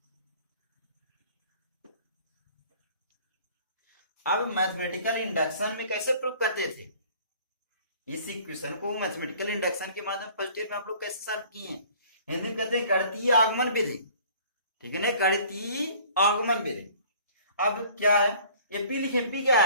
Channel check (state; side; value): inverted; both; correlation -0.52